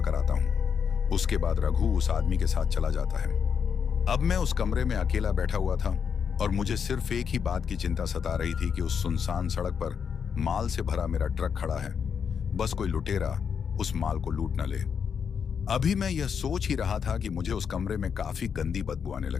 आता हूं। उसके बाद रघु उस आदमी के साथ चला जाता है। अब मैं उस कमरे में अकेला बैठा हुआ था और मुझे सिर्फ एक ही बात की चिंता सता रही थी कि उस सुनसान सड़क पर माल से भरा मेरा ट्रक खड़ा है, बस कोई लुटेरा उस माल को लूट न ले। अभी मैं यह सोच ही रहा था कि मुझे उस कमरे में काफी गंदी बदबू आने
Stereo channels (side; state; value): right; quieter; 6.9 dB